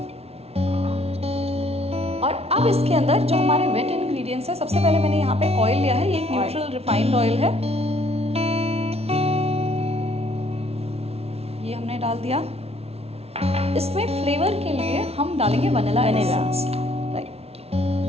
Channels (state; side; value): late; left; 0.30 ms